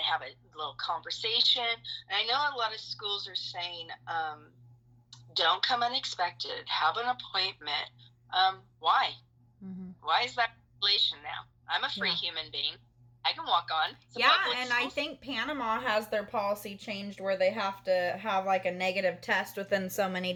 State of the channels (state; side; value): identical; both; correlation 1.00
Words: have a little conversation. And I know a lot of schools are saying, don't come unexpected, have an appointment. Why? Why is that regulation now? I'm a free human being. I can walk on. And I think Panama has their policy changed where they have to have like a negative test within so many